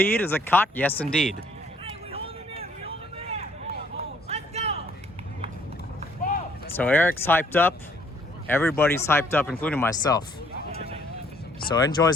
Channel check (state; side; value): normal; both; correlation 0.63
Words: is it caught? Yes, indeed. So Eric's hyped up. Everybody's hyped up, including myself. So NJoys